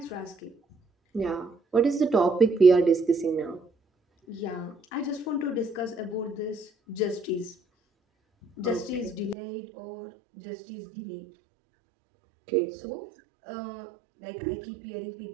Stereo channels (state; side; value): drops out; left; at 9.3 s